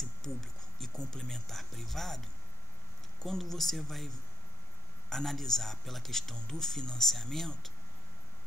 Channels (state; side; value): normal; both; correlation 0.55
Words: público e complementar privado, quando você vai analisar pela questão do financiamento,